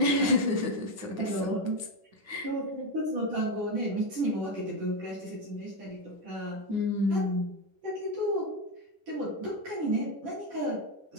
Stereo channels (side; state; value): left; late; 9.7 ms